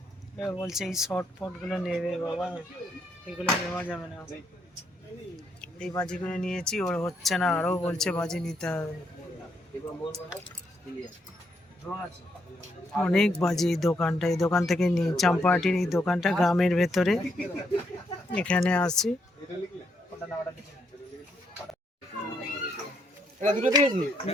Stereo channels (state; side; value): normal; both; correlation 0.76